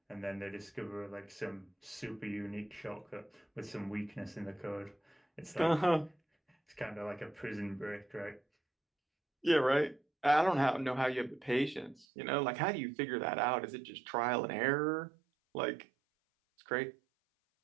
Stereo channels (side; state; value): left; drops out; at 12.1 s